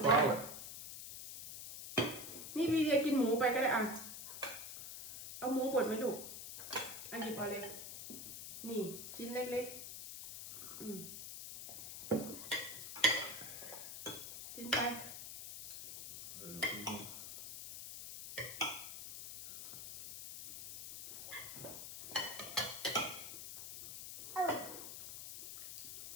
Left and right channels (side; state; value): left; noise; hiss, 9 dB below the sound